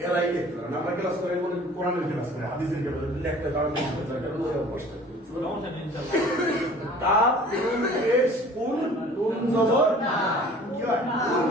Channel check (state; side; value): normal; both; correlation 0.48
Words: এরাই দেখতে পারেন। আমরা ক্লাস করে বলে কোরআনের ক্লাস করে, হাদিসের ক্লাস লেখতে কারণ অভ্যাসটা তাপ নুন পেশ কুন নুন জবর না, কি হয়